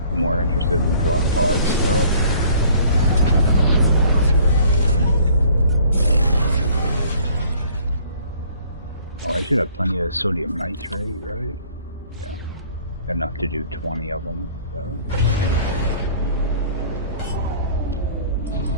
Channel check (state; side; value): inverted; both; correlation -0.55